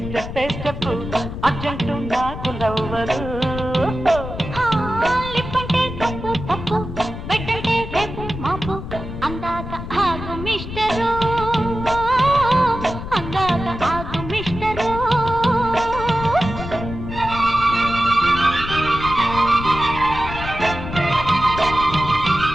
స్టెప్పే స్టెప్. అర్జెంటు నాకు నవ్వరు. లిప్పంటే తప్పు తప్పు, బెడ్డంటే రేపు మాపు. అందాక ఆగు మిస్టరు, అందాక ఆగు మిస్టరు.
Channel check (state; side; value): noise; left; rumble, 8 dB below the sound